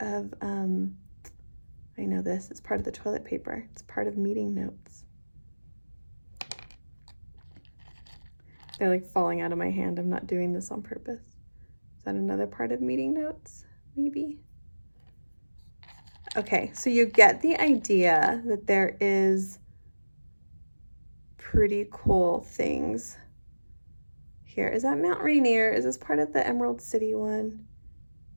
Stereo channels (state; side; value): inverted; both; correlation -1.00